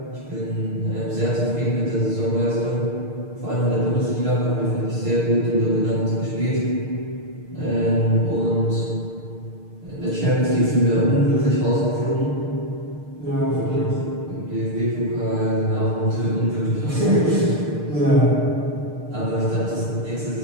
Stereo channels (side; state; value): left; late; 6.6 ms